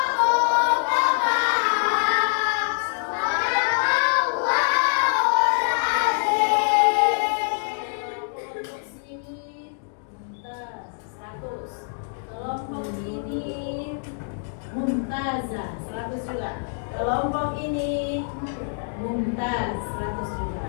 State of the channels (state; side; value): silent; right; 62 dB below the other